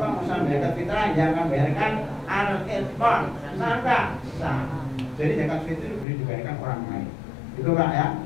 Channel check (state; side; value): drops out; right; at 6.1 s